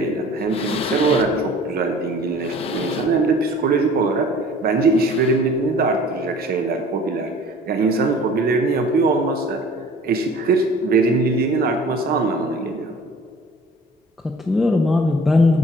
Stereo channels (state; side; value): normal; both; correlation 0.49